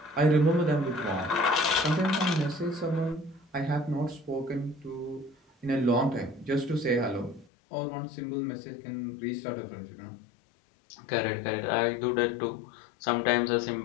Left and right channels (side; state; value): right; drops out; at 7.5 s